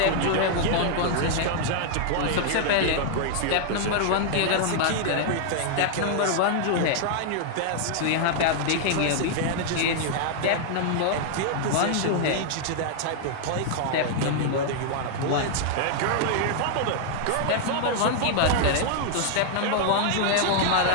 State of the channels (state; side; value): different; both; correlation 0.00